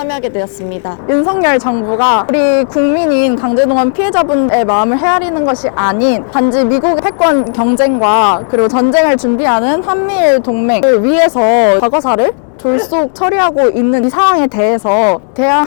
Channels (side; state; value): right; silent; 67 dB below the other